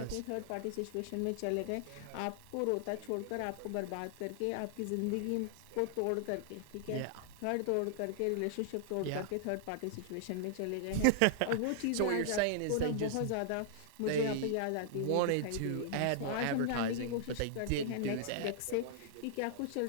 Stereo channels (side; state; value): both; different; correlation -0.01